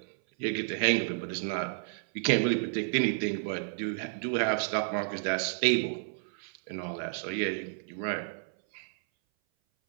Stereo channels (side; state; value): left; silent; 57 dB below the other